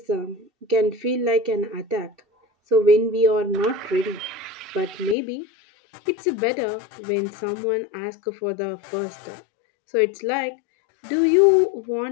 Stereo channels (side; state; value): right; drops out; at 5.2 s